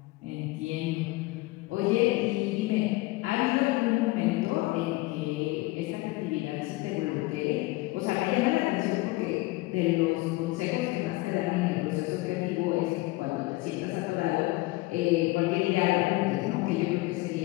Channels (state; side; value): quieter; right; 21.1 dB